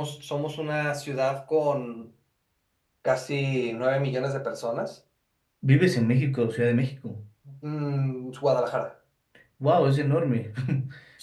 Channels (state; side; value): identical; both; correlation 1.00